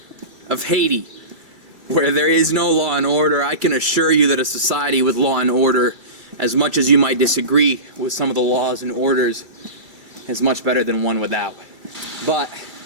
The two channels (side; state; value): left; late; 2.3 ms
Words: of Haiti, where there is no law and order, I can assure you that a society with law and order, as much as you might disagree with some of the laws and orders, is much better than one without. But